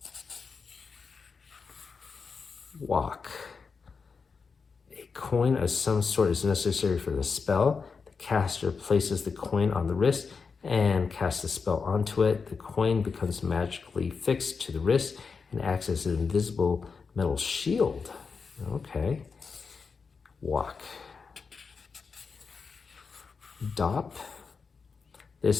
Walk, a coin of some sort is necessary for the spell. The caster places the coin on the wrist and casts the spell onto it. The coin becomes magically fixed to the wrist and acts as an invisible metal shield. Okay. Walk. Dop.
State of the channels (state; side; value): quieter; right; 5.2 dB